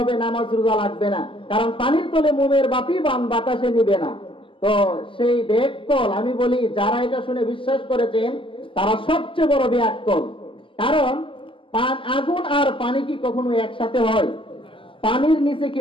নামাজ রোজা লাগবে না, কারণ পানির তলে মোমের বাতি বান বাতাসে নিবে না। তো সেই বেয়াক্কল, আমি বলি যারা এটা শুনে বিশ্বাস করেছেন তারা সবচেয়ে বড় বেয়াক্কল। কারণ আগুন আর পানি কি কখনো একসাথে হয়? পানির নিচে কি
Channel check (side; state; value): right; late; 0.25 ms